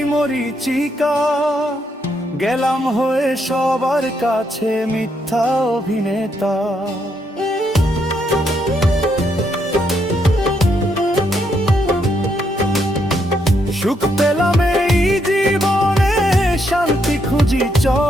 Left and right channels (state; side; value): normal; both; correlation 0.77